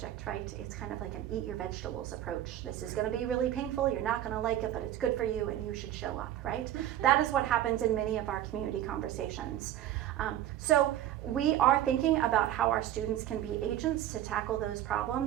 right? It's kind of like an eat your vegetables approach. This is going to be really painful, you're not going to like it, but it's good for you and you should show up, right? That is what happens in many of our community conversations. So we are thinking about how our students can be agents to tackle those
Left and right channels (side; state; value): left; quieter; 12.2 dB